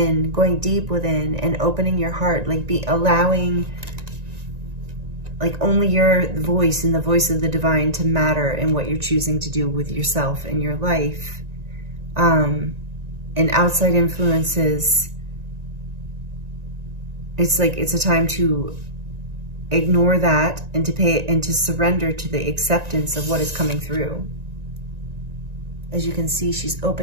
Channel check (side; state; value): left; late; 1.9 ms